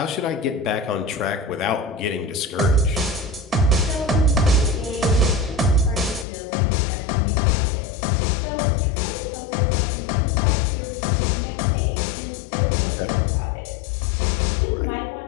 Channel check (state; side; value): drops out; right; at 6.2 s